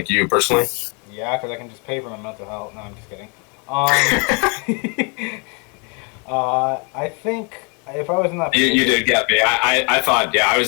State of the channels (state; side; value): quieter; right; 34.1 dB